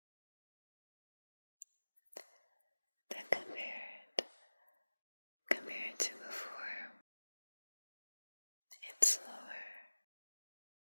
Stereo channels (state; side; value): inverted; both; correlation -1.00